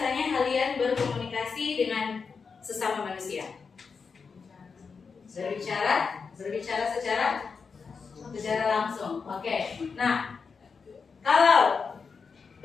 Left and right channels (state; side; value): quieter; right; 5.3 dB